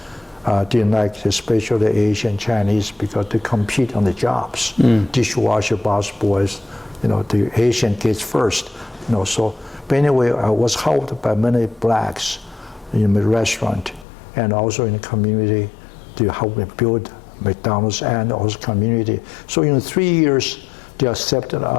Didn't like especially Asian, Chinese, because they compete on the jobs. Dishwasher, boss boys, the Asian kids first. So, but anyway, I was helped by many blacks in the restaurant and also in the community to help me build McDonald's and also community. So in 3 years, they accepted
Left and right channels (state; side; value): drops out; right; at 14.1 s